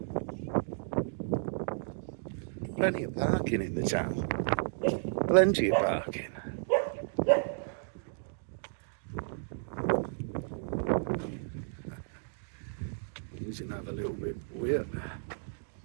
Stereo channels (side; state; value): left; silent; digital silence